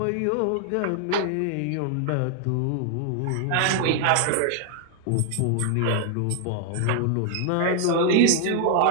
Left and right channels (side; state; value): both; different; correlation 0.00